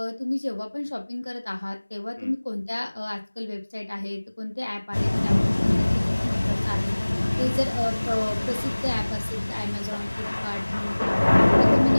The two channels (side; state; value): both; inverted; correlation -1.00